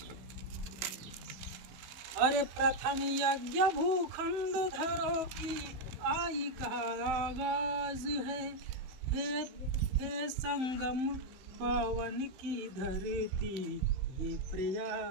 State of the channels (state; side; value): late; left; 15 ms